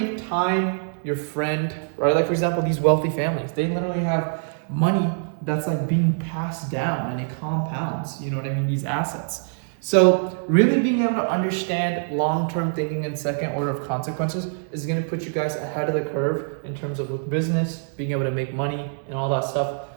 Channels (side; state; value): left; silent; digital silence